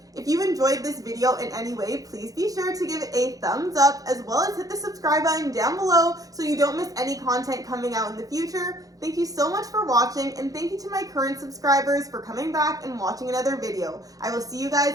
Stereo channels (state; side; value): late; left; 0.17 ms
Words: If you enjoyed this video in any way, please be sure to give it a thumbs up, as well as hit the subscribe button down below so you don't miss any content coming out in the future. Thank you so much for watching, and thank you to my current subscribers for coming back and watching another video. I will see you